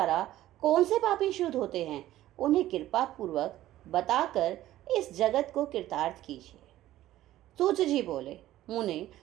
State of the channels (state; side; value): quieter; left; 14.4 dB